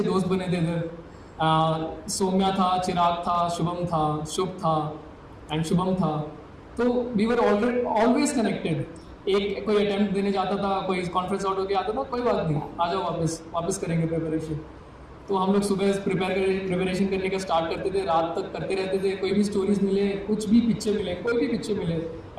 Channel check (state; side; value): identical; both; correlation 1.00